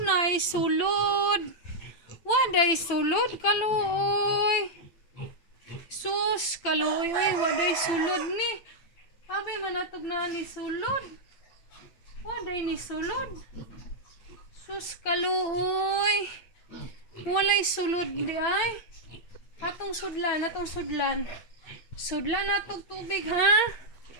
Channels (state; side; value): late; right; 8.8 ms